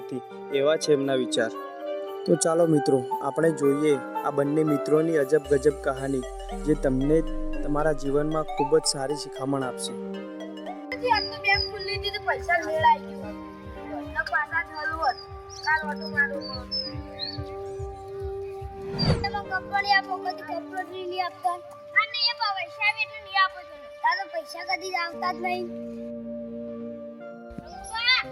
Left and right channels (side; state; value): both; identical; correlation 1.00